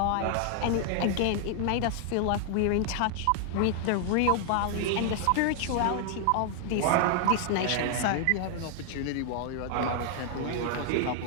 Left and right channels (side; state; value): both; different; correlation 0.00